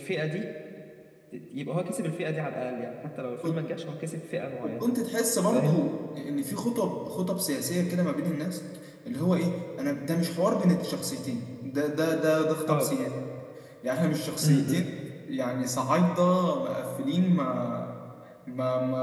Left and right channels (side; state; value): both; identical; correlation 1.00